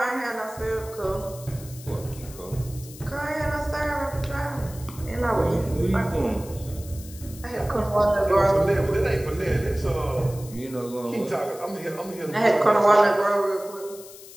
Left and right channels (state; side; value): noise; left; hiss, 17 dB below the sound